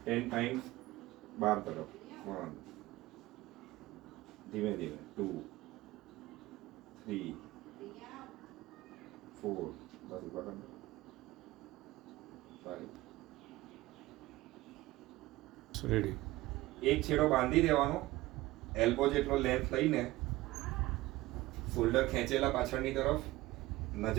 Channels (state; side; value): quieter; left; 18.4 dB